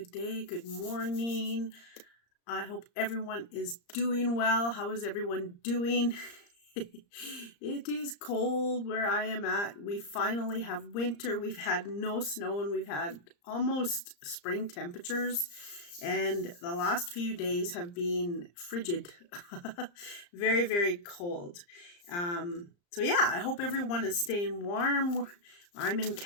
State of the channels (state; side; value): late; right; 34 ms